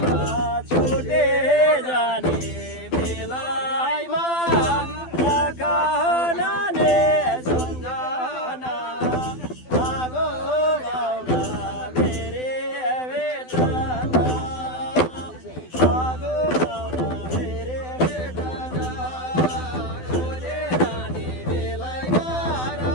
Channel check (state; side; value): late; right; 12 ms